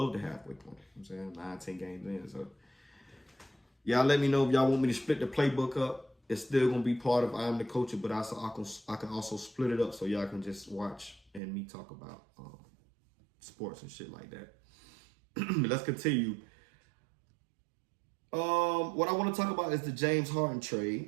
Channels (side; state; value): left; drops out; at 11.4 s